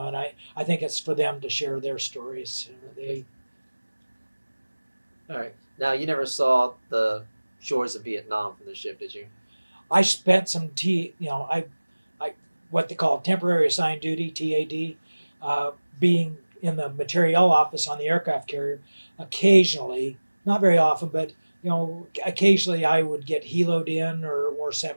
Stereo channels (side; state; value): both; inverted; correlation -1.00